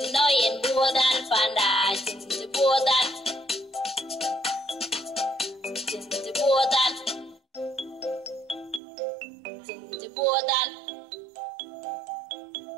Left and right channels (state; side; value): drops out; left; at 8.8 s